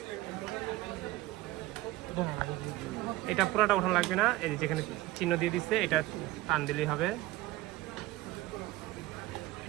এটা পুরোটা ওঠানো লাগবে না, এই যেখানে চিহ্ন দিয়ে দিচ্ছে এটা টান দিলেই হবে।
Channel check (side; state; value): left; quieter; 17.4 dB